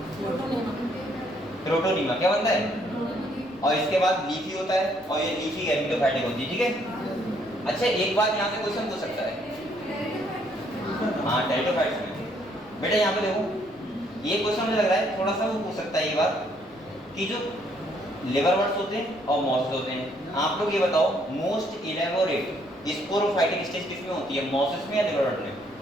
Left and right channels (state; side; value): noise; left; rumble, 30 dB below the sound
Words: प्रोटोनीमा क्या बनता है? और इसके बाद लीफी होता है, और ये लीफी गैमेटोफाइटिक होती है, ठीक है? अच्छा एक बात यहाँ से क्वेश्चन पूछ सकता है, हाँ टेरिडोफाइट्स में बेटा यहाँ पे देखो, ये क्वेश्चन मुझे लग रहा है थोड़ा सा वो पूछ सकता है ये बात कि जो लिवरवर्ट्स होते हैं और मॉसिस होते हैं, आप लोग ये बताओ मोस्ट इलेबोरेट स्पोरोफाइटिक स्टेज किसमें होती है? मॉसिस में या लिवरवर्ट में?